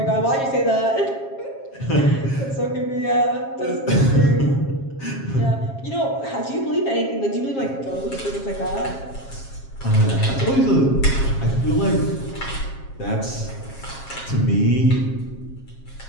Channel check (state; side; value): late; right; 7.4 ms